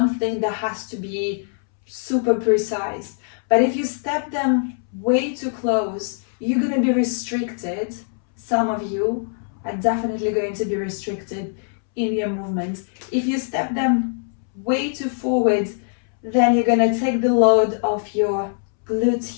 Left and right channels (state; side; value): silent; right; 64 dB below the other